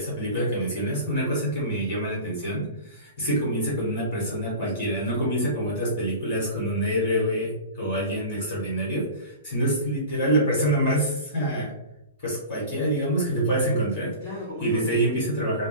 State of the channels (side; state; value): both; inverted; correlation -0.35